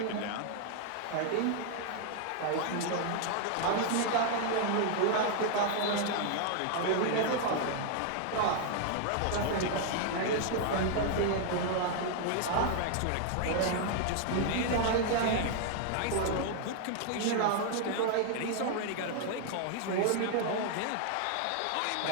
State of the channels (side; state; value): both; different; correlation 0.00